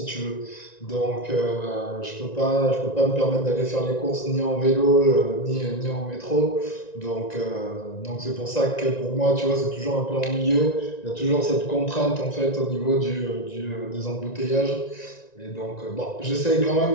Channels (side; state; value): right; late; 1.9 ms